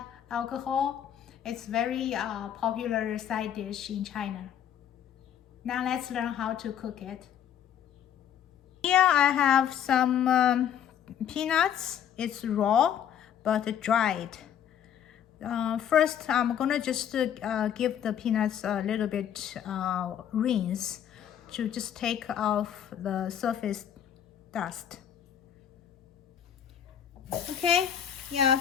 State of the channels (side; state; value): right; quieter; 9.5 dB